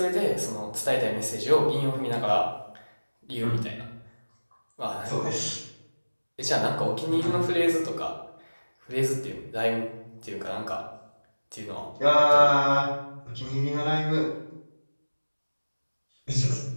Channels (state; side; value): inverted; both; correlation -1.00